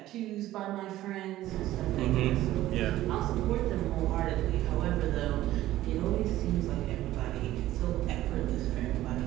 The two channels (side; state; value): left; quieter; 14.8 dB